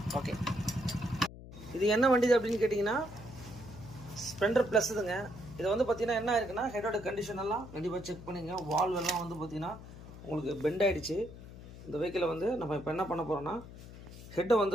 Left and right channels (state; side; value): noise; left; hum, 15 dB below the sound